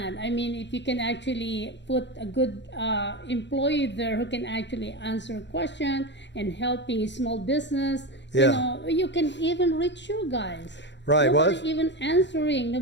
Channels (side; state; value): right; late; 0.52 ms